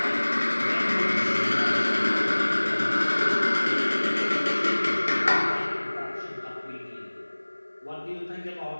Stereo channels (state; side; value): inverted; both; correlation -1.00